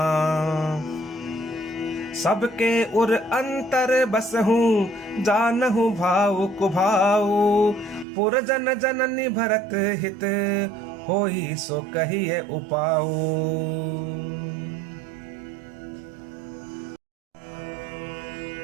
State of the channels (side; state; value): left; drops out; at 8.1 s